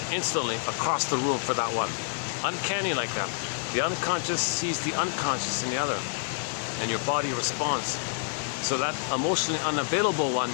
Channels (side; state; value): right; silent; 59 dB below the other